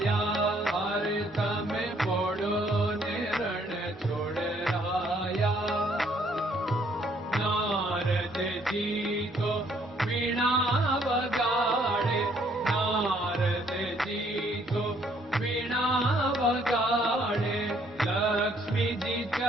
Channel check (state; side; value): normal; both; correlation 0.66